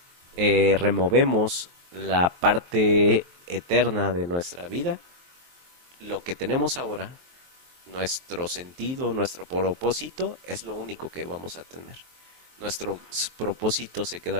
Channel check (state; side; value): late; left; 23 ms